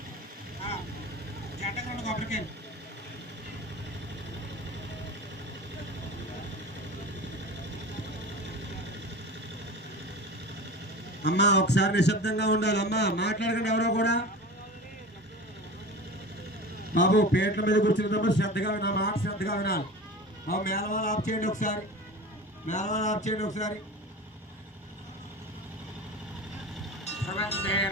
జంటకు 2 కొబ్బరికాయలు. అమ్మా ఒకసారి నిశ్శబ్దంగా ఉండాలి. అమ్మా మాట్లాడకండి ఎవరో కూడా. బాబు పేట్ల మీద కూర్చున్నప్పుడు శ్రద్ధగా నా మాట శ్రద్ధగా వినాలి. బాబు మేళవాళ్ళు ఆఫ్ చేయండి ఒకసారి. మేళవాళ్ళు ఆఫ్ చేయండి ఒకసారి.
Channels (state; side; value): normal; both; correlation 0.33